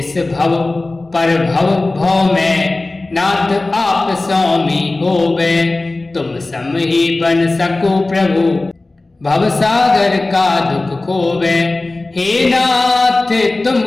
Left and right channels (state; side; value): quieter; right; 3.1 dB